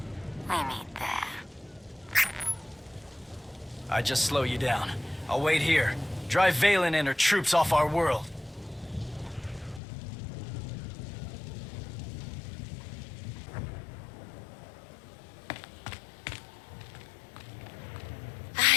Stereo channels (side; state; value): right; drops out; at 9.8 s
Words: We meet there. I just slow you down. I'll wait here. Drive Valen and her troops off our world.